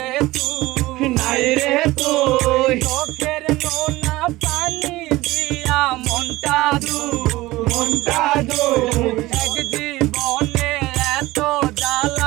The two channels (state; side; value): quieter; left; 18.7 dB